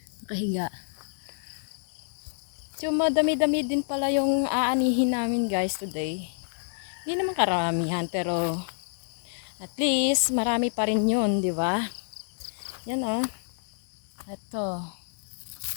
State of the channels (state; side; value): silent; right; digital silence